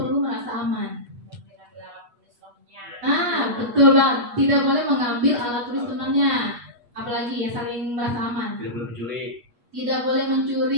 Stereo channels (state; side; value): late; left; 8.4 ms